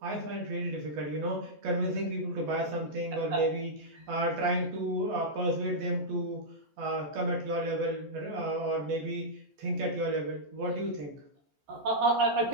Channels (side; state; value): left; late; 14 ms